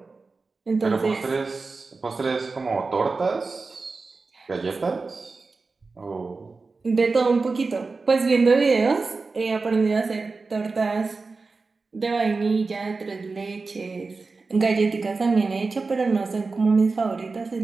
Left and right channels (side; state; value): left; quieter; 4.0 dB